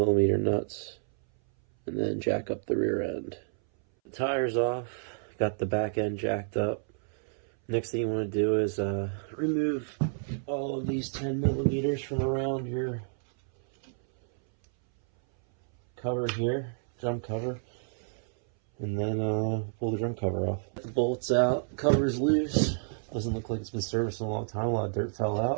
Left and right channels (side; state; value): left; silent; 58 dB below the other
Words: nuts, and then jack up the rear end. The tire's off, got the back end jacked up. Next thing you want to do is remove all of these 10mm from around your cover here, drum cover. And then pull the drum cover off. The bolts out, cover's loose. Doesn't look like it's been serviced in a long time. A lot of dirt fell